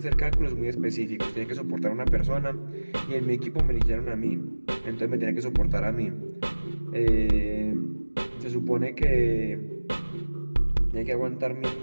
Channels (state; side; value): inverted; both; correlation -1.00